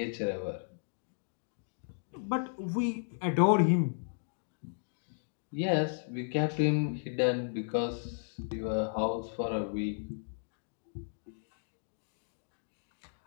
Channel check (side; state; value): right; silent; digital silence